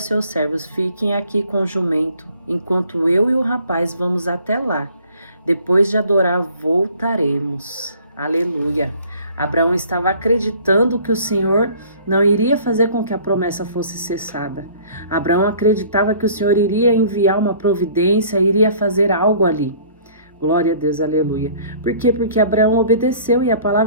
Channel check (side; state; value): both; inverted; correlation -0.53